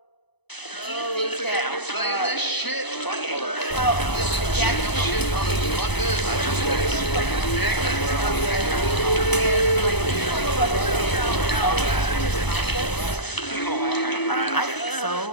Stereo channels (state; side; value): late; right; 0.99 ms